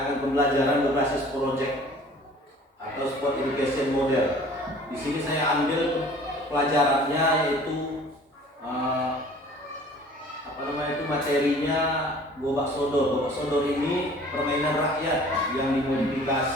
pembelajaran berbasis project atau sport education model. Di sini saya ambil pelajarannya yaitu materinya Gobak Sodor. Gobak Sodor ini permainan rakyat yang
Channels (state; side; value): normal; both; correlation 0.49